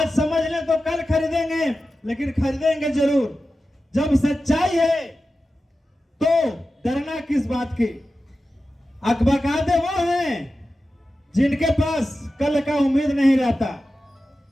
समझ लें तो कल खरीदेंगे, लेकिन खरीदेंगे जरूर। जब सच्चाई है तो डरना किस बात की? अकबकाते वो हैं जिनके पास कल का उम्मीद नहीं रहता,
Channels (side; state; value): both; normal; correlation 0.93